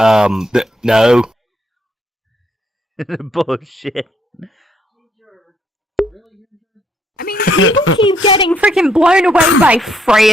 no. Bullshit. I mean, people keep getting freaking blown away by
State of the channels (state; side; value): normal; both; correlation 0.71